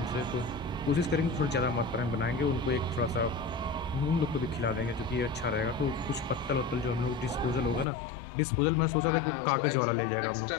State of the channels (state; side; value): drops out; right; at 7.9 s